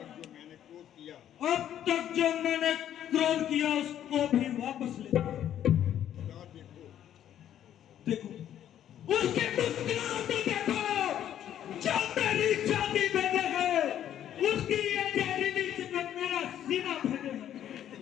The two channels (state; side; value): quieter; right; 10.7 dB